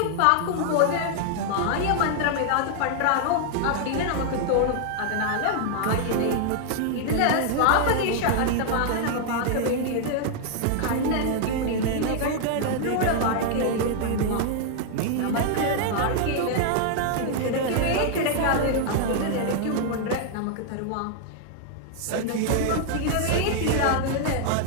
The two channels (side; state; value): both; different; correlation 0.00